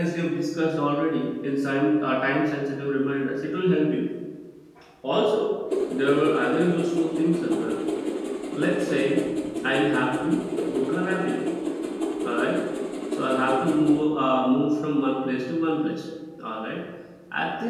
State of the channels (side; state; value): both; identical; correlation 1.00